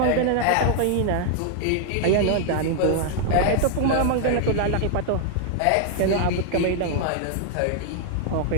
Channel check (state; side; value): different; both; correlation 0.00